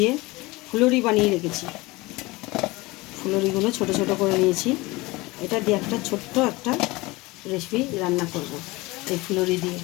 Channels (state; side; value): quieter; right; 22.2 dB